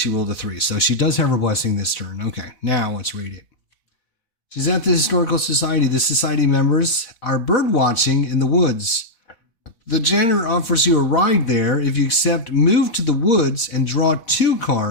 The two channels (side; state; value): right; late; 4.1 ms